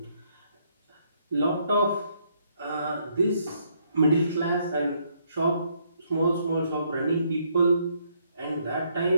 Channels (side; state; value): both; inverted; correlation -0.71